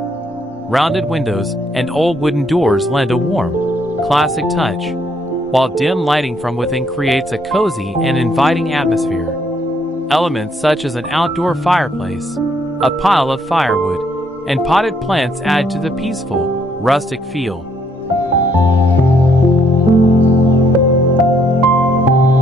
Rounded windows and old wooden doors lend a warm, classic touch, while dim lighting from within creates a cozy and inviting atmosphere. Elements such as an outdoor fireplace, a pile of firewood, and potted plants add to the peaceful, rustic feel.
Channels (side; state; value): both; normal; correlation 0.69